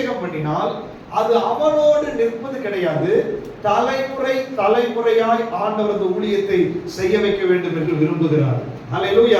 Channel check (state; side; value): identical; both; correlation 1.00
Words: பண்ணினால் அது அவனோடு நிற்பது கிடையாது. தலைமுறை தலைமுறையாய் ஆண்டவர் அந்த ஊழியத்தை செய்ய வைக்க வேண்டும் என்று விரும்புகிறார்.